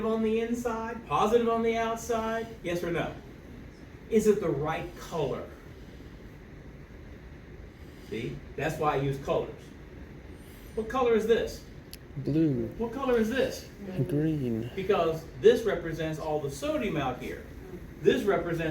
on the inside, positive on the outside? Yes or no? Is it the right color? See? That's why I use colors. What color is this? Blue. What color is this? Green. Because this represents all the sodium out here. This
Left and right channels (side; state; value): both; identical; correlation 1.00